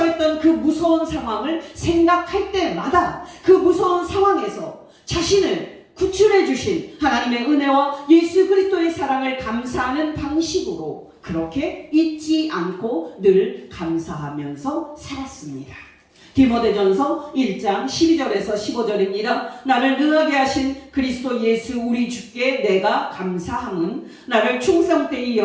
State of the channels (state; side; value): identical; both; correlation 1.00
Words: 그 무서운 상황을 생각할 때마다 그 무서운 상황에서 자신을 구출해 주신 하나님의 은혜와 예수 그리스도의 사랑을 감사하는 방식으로 그렇게 잊지 않고 늘 감사하면서 살았습니다. 디모데전서 1장 12절에서 15절입니다. 나를 능하게 하신 그리스도 예수 우리 주께 내가 감사함은 나를 충성되이